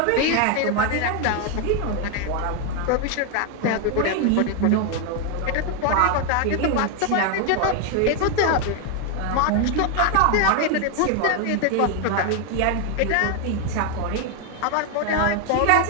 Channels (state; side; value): different; both; correlation 0.01